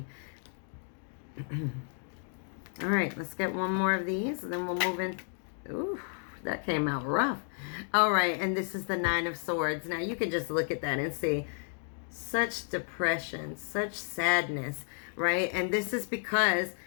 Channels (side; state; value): right; silent; 56 dB below the other